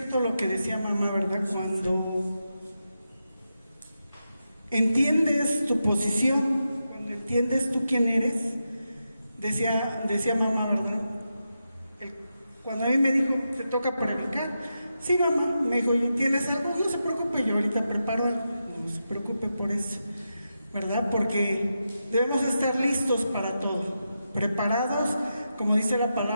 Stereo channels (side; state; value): both; inverted; correlation -0.88